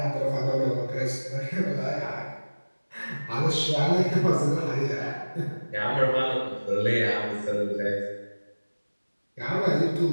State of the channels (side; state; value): both; inverted; correlation -1.00